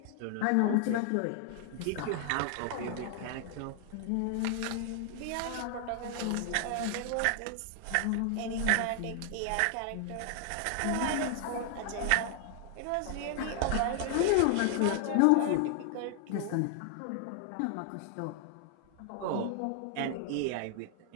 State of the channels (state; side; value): different; both; correlation 0.00